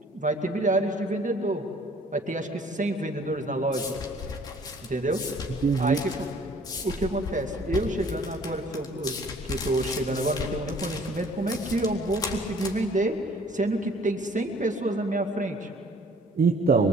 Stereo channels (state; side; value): normal; both; correlation 0.55